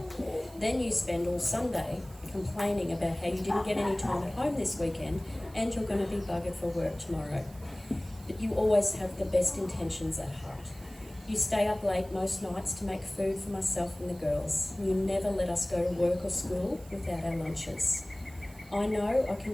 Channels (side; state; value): right; noise; hiss, 24 dB below the sound